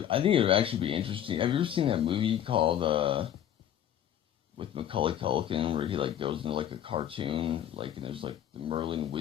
think it would actually be interesting. Have you ever seen that movie called with Macaulay Culkin where he like goes into like a cartoon, like, and there's like the Merlin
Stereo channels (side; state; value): right; quieter; 10.5 dB